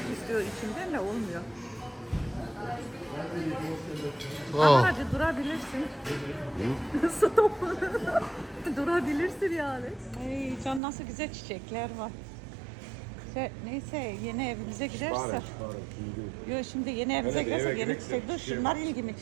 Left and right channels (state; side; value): drops out; left; at 10.8 s